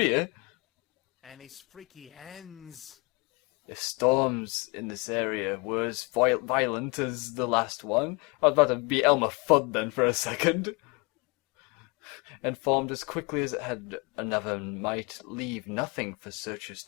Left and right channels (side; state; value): right; quieter; 28.5 dB